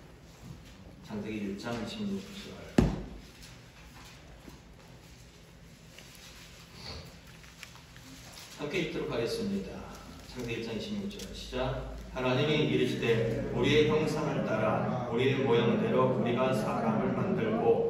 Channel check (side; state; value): both; identical; correlation 1.00